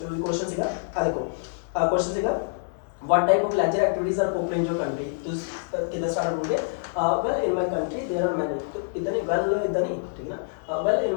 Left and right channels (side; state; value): right; silent; digital silence